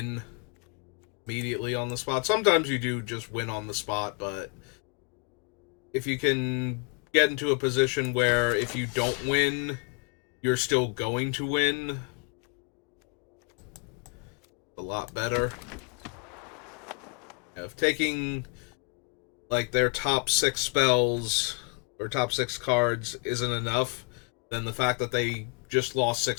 immediately on the spot. Sometimes you do just win on the spot, but if you can get into a position where if you don't win, you're still going to win, a lot better. If taking like their top 6 spells or top 6 cards isn't enough, then the fact that they just lost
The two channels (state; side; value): quieter; right; 36.5 dB